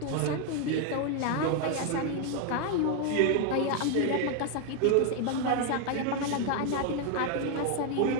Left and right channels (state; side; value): different; both; correlation 0.01